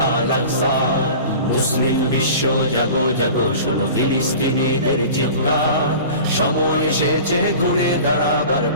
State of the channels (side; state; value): both; inverted; correlation -0.39